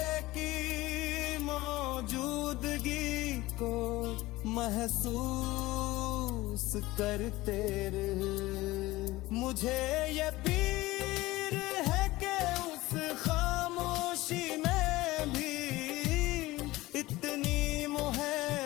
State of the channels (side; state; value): right; quieter; 18.9 dB